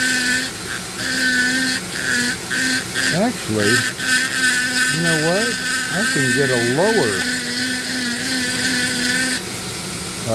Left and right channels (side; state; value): both; identical; correlation 1.00